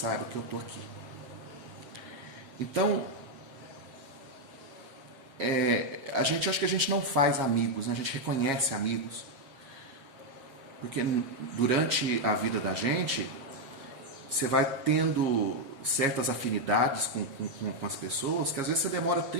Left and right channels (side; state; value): left; late; 7.4 ms